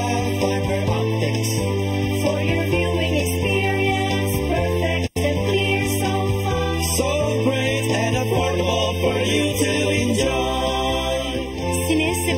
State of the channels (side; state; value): both; identical; correlation 1.00